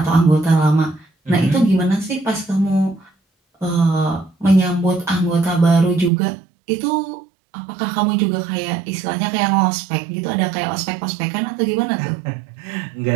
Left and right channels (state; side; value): drops out; left; at 6.1 s